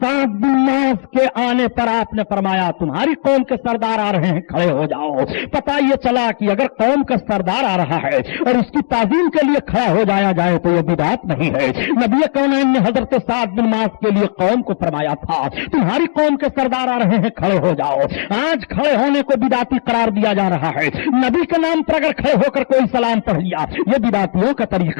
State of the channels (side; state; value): right; silent; digital silence